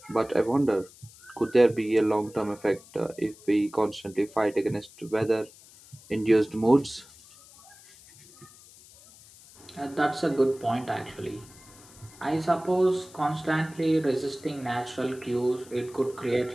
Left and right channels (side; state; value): left; noise; hiss, 23 dB below the sound